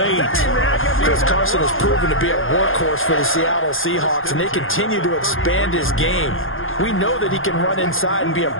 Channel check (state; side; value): late; right; 0.59 ms